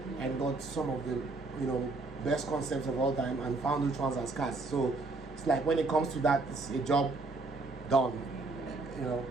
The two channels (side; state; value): left; quieter; 3.4 dB